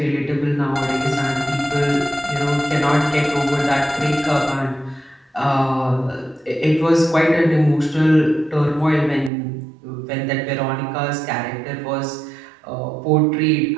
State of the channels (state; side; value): drops out; left; at 9.3 s